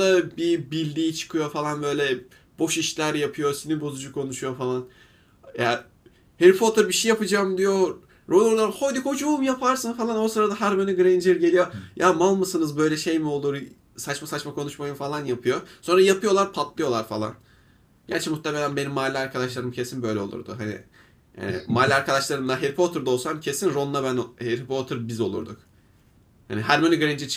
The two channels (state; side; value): identical; both; correlation 1.00